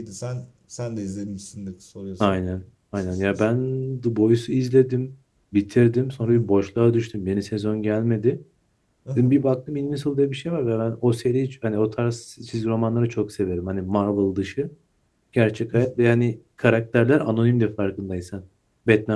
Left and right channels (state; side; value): identical; both; correlation 1.00